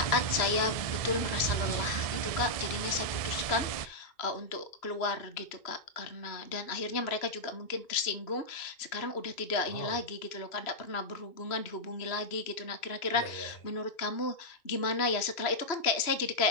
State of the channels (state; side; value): late; right; 2.9 ms